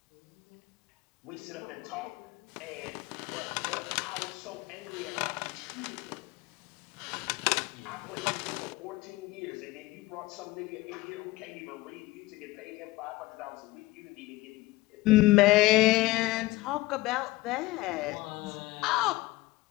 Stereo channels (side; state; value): right; quieter; 19.5 dB